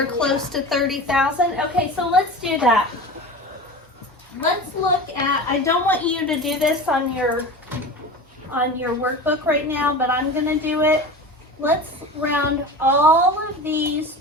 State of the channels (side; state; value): both; normal; correlation 0.32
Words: close to 30,000? Okay, so let's do that. Let's look at, I don't want you to do this on your workbook right now, but I'm going to do it. Let's round all of these